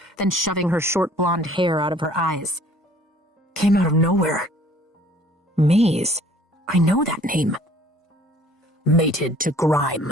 then shoving her short blonde hair out of her eyes. Came out of nowhere. Maze? I know that name. Mated to Grime,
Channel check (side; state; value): both; normal; correlation 0.55